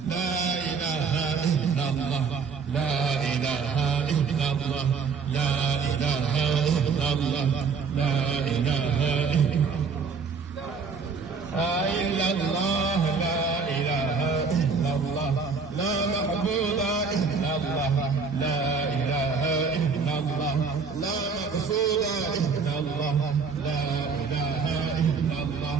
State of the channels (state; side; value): quieter; left; 5.3 dB